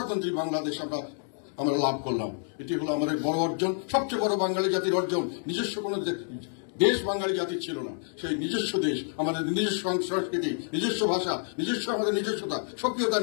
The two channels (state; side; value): silent; right; 59 dB below the other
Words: বাংলাদেশ আমরা লাভ করলাম। এটি হলো আমাদের বড় অর্জন, সবচেয়ে বড় বাঙালি জাতির অর্জন। নিজস্ব কোনো দেশ বাঙালি জাতির ছিল না, সেই নিজস্ব দেশ, আমাদের নিজস্ব সংস্কৃতি, নিজস্ব ভাষা, নিজস্ব আমাদের নিজস্বতা, সক্রিয়তা